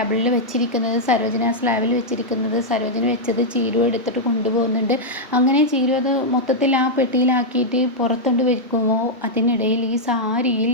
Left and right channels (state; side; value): normal; both; correlation -0.05